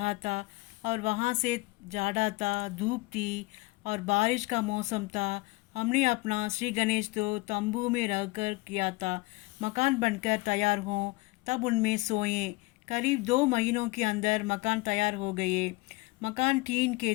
था। और वहाँ से जाड़ा था, धूप थी और बारिश का मौसम था। हमने अपना श्री गणेश तो तंबू में रहकर किया था। मकान बनकर तैयार हों तब उनमें सोएं। करीब 2 महीनों के अंदर मकान तैयार हो गए। मकान टीन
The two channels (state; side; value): quieter; right; 23.2 dB